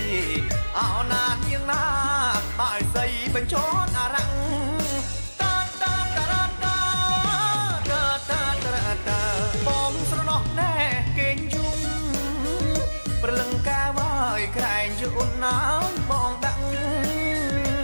អោណានាងណាបាយស្រីបញ្ចន់អារ៉ាំងបងស្រណោះណែគេងយំព្រលឹងកាវាយក្រែងយូនណាបងដាក់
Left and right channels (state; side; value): inverted; both; correlation -1.00